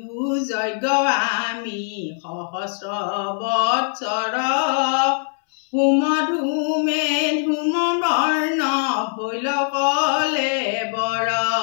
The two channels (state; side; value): silent; right; 63 dB below the other